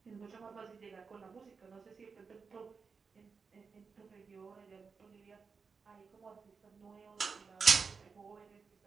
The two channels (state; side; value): quieter; left; 5.2 dB